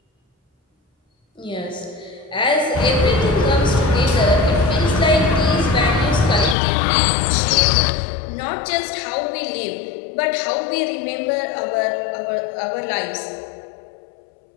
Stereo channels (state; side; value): drops out; right; at 6.6 s